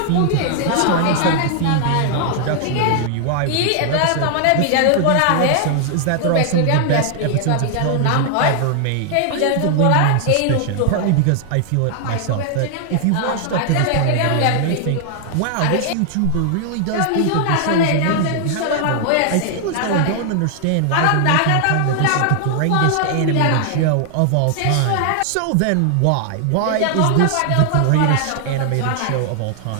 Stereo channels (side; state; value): both; different; correlation 0.00